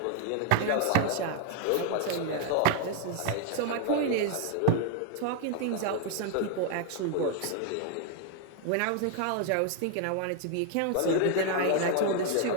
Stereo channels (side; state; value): both; different; correlation 0.00